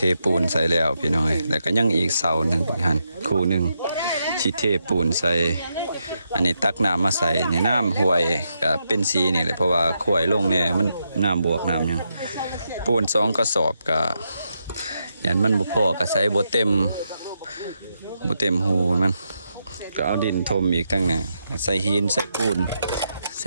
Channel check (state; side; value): inverted; both; correlation -0.82